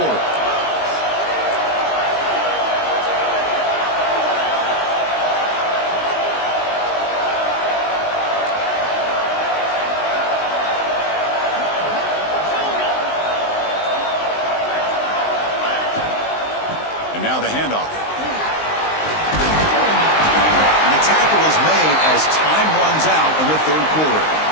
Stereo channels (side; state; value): right; late; 19 ms